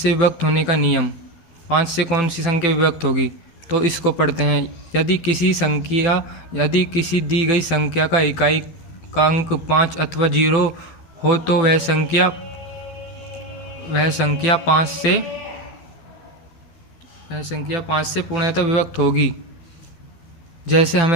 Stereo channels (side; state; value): right; late; 12 ms